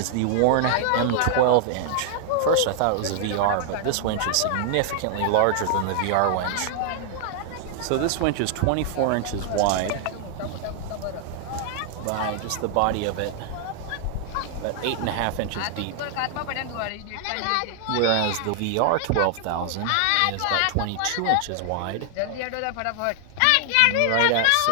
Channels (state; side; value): different; both; correlation 0.00